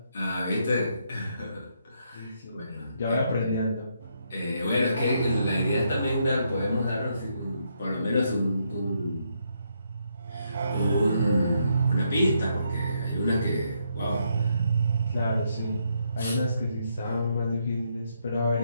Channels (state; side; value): inverted; both; correlation -0.76